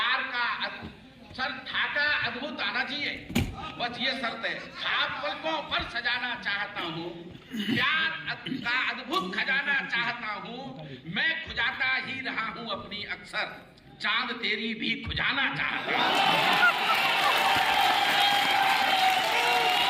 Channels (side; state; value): both; identical; correlation 1.00